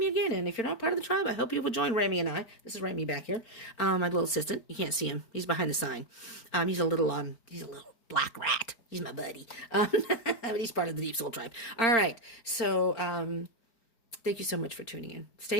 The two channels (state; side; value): late; right; 4.4 ms